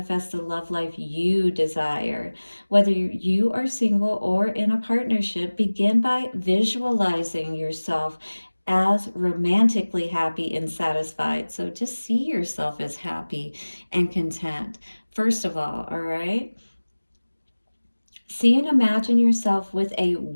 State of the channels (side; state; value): both; inverted; correlation -1.00